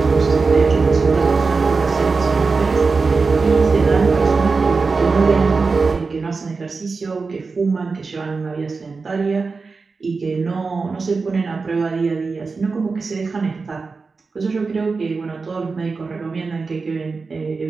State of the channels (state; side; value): quieter; left; 4.4 dB